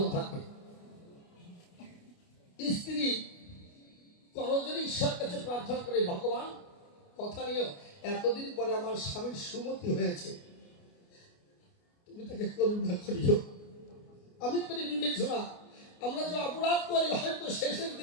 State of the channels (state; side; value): late; right; 29 ms